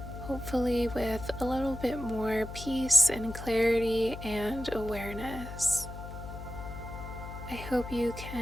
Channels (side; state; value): left; noise; hum, 10 dB below the sound